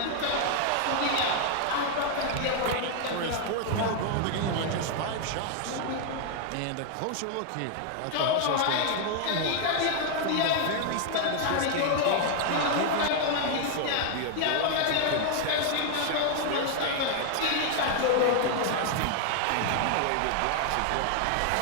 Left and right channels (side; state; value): both; different; correlation 0.00